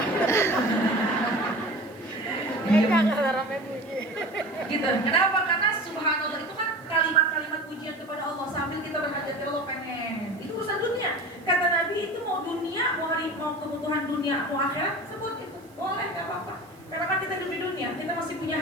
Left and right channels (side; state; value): right; noise; hiss, 30 dB below the sound